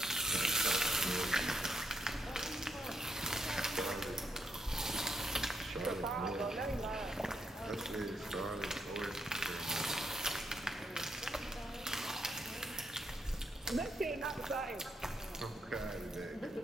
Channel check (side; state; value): both; normal; correlation 0.79